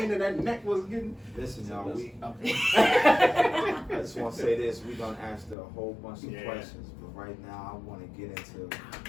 in that neck was getting. Listen, y'all. I just want to say this. We're gonna ask a whole bunch of questions, but right now I want to get into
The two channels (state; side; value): drops out; right; at 5.6 s